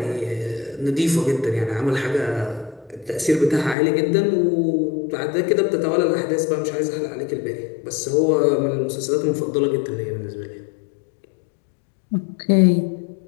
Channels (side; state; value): right; drops out; at 3.8 s